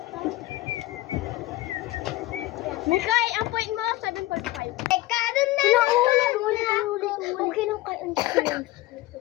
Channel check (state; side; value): quieter; right; 17.7 dB